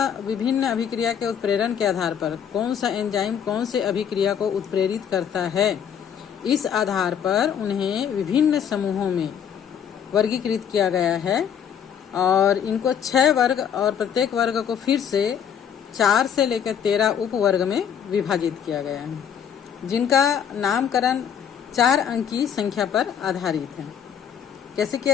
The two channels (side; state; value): right; quieter; 8.2 dB